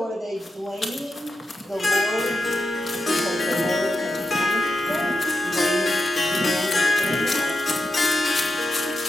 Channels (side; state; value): both; normal; correlation 0.87